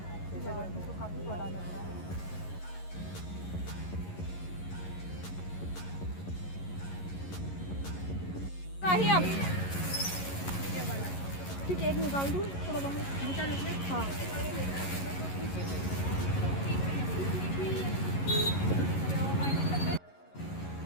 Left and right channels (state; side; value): late; right; 11 ms